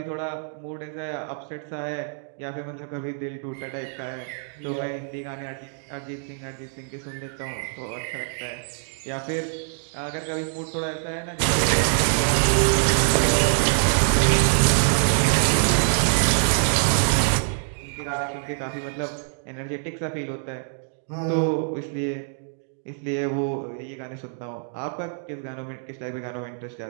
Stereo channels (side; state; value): left; silent; digital silence